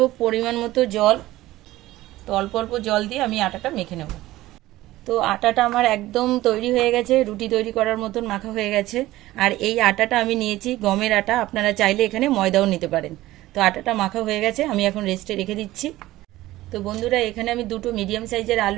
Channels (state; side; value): quieter; left; 16.6 dB